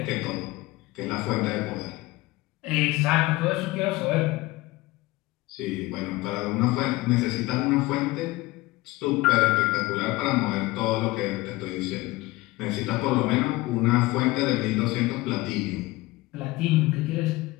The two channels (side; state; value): right; quieter; 20.0 dB